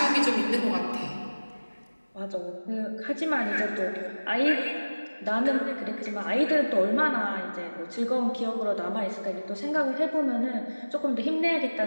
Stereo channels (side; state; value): both; inverted; correlation -1.00